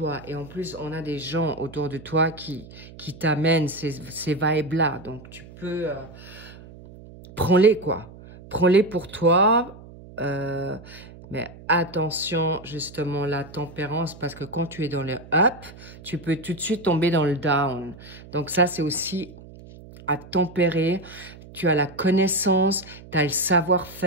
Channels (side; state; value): right; noise; hum, 18 dB below the sound